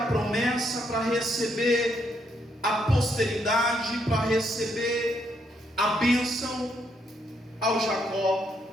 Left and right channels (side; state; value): both; normal; correlation 0.75